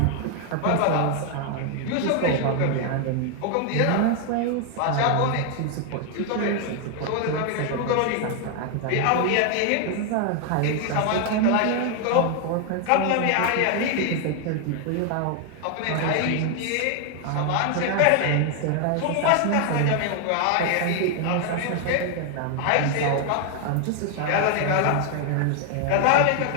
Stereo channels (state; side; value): different; both; correlation 0.00